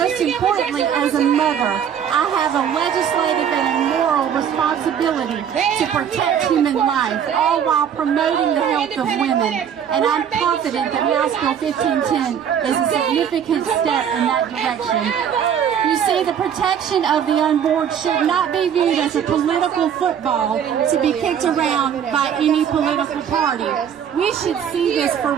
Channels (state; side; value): quieter; left; 8.5 dB